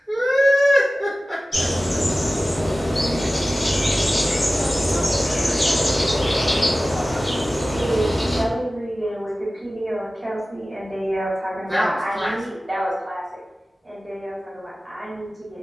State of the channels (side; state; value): both; normal; correlation 0.96